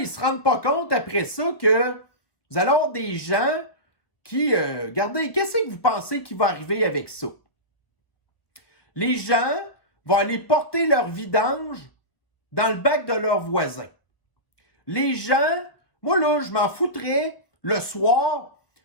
ne se rendent pas compte après ça que vous allez avoir des gens qui, regardez, qu'est-ce que vous pensez qui va arriver avec ça? Les gens vont aller porter leur vidange dans le bac de leurs voisins. Les gens, moi là, je m'en foutrais le soir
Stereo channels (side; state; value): right; late; 1.0 ms